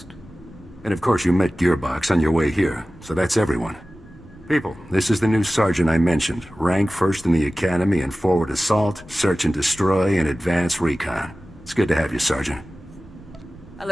And of course you met Gearbox on your way here, so that's everyone. People, this is the new sergeant I mentioned. Rank first in the Academy in forward assault, search and destroy, and advanced recon. It's good to have you, Sergeant. I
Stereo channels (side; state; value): both; normal; correlation 0.96